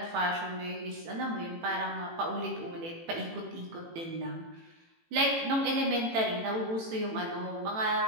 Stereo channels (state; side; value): late; left; 18 ms